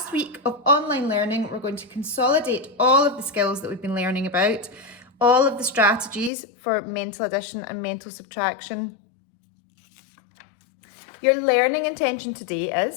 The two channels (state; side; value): drops out; right; at 6.3 s